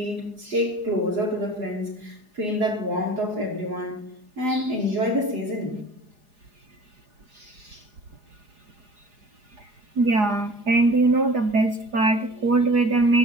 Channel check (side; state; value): left; late; 4.8 ms